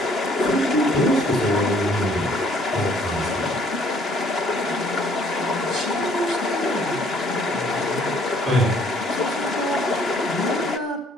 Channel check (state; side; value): normal; both; correlation 0.61